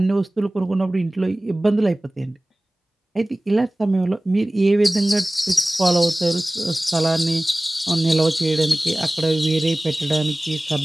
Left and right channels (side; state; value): both; normal; correlation 0.98